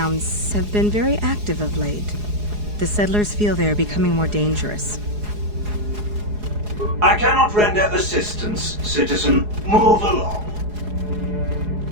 have been very active of late. The settlers feel they are becoming more dangerous. I cannot render assistance, citizen. Move along.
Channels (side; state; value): left; late; 4.8 ms